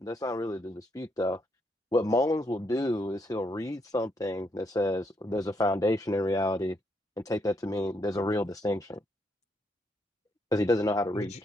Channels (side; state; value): both; normal; correlation 0.76